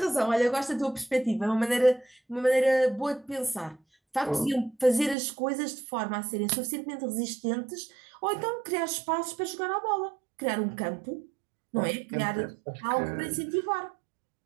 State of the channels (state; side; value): drops out; left; at 5.2 s